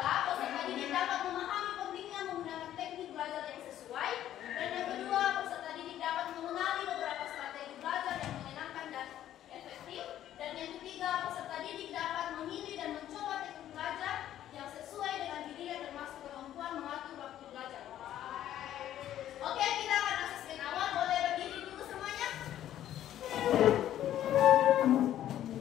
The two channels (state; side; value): quieter; right; 11.9 dB